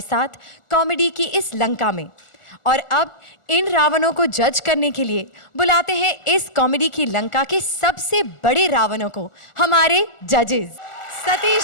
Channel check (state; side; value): late; right; 1.4 ms